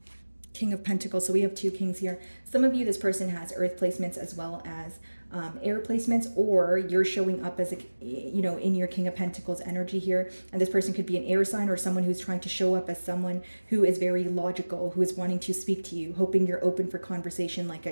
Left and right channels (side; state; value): both; inverted; correlation -1.00